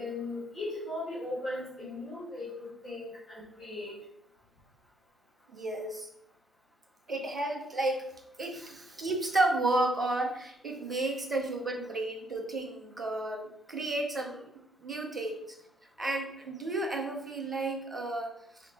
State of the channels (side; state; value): both; normal; correlation 0.69